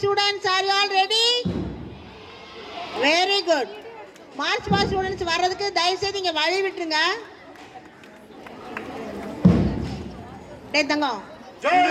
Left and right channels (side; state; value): both; identical; correlation 1.00